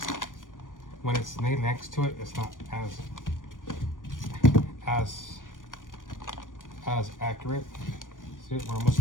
when it's laid next to it, it's not as accurate. See it? We're almost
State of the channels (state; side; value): late; right; 0.88 ms